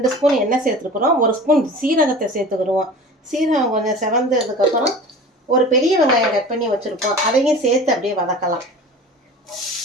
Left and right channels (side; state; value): both; normal; correlation 0.38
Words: ஸ்பூன் எண்ணெய் சேர்த்துருக்குறோம். 1 ஸ்பூன் சீரகத்தை சேர்த்துக்கிடுவோம். சீரகம் கொஞ்சம் செவந்ததுக்கப்புறம் ஒரு பெரிய வெங்காயம் கட் பண்ணி வச்சுருப்போம். அதையும் சேர்த்து அப்படியே வதக்கலாம்.